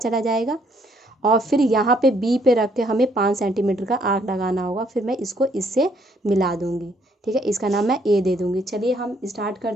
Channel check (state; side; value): normal; both; correlation 0.68